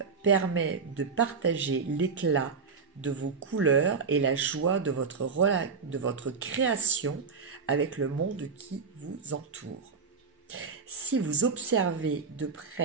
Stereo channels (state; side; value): quieter; left; 5.3 dB